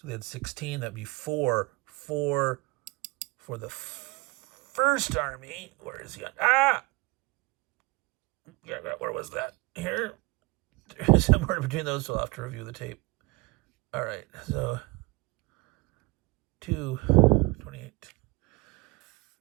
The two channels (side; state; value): left; quieter; 24.3 dB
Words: they had 16. That'd be 4 for the first army. Where is he on? Ah! Yeah, where was that? Here? Somewhere between those, so I'll have to review the tape. All right, so 2, 28.